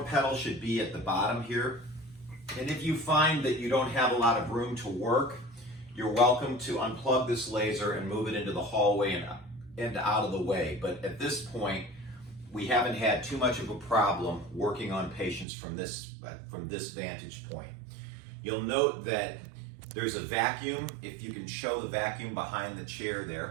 pedal should be at the bottom here. And if you find that you don't have a lot of room to work, you're welcome to unplug this laser and move it into the hallway and out of the way. But at this point, we haven't had too much of a problem working on patients from this vantage point. You'll note that there's a vacuum, if you can show the vacuum behind the chair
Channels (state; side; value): drops out; left; at 15.5 s